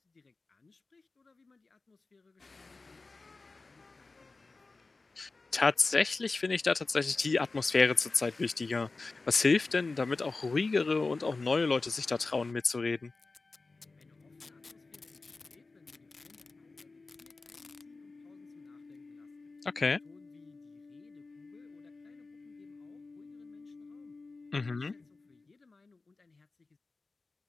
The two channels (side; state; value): right; quieter; 3.7 dB